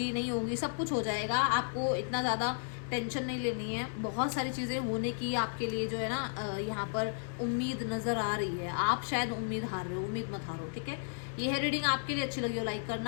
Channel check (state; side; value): silent; right; digital silence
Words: नहीं होंगी, सब कुछ हो जाएगा, आपको इतना ज़्यादा टेंशन नहीं लेनी है। बहुत सारी चीज़ें होने की आपके लिए जो है ना यहाँ पर उम्मीद नज़र आ रही है। आप शायद उम्मीद हार रहे हो, उम्मीद मत हारो, ठीक है। ये है रीडिंग, आपके लिए अच्छी लगी हो लाइक